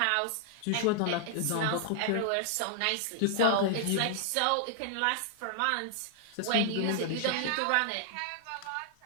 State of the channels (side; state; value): both; different; correlation -0.01